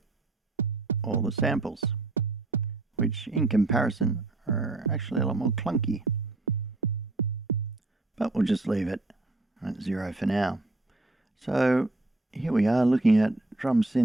all the samples, which in comparison are actually a lot more clunky. But we'll just leave it at 0 for now. So here we are looking at drum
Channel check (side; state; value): left; quieter; 3.0 dB